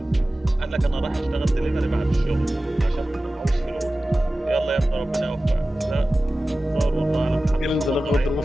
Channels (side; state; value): both; normal; correlation 0.96